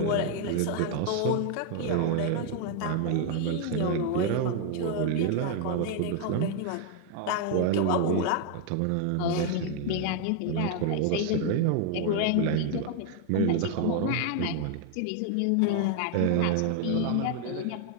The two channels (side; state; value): both; different; correlation 0.00